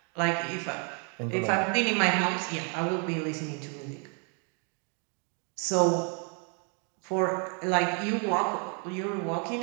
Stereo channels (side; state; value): left; quieter; 38.6 dB